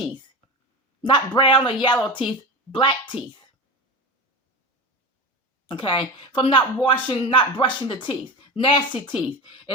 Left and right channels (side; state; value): both; normal; correlation 0.25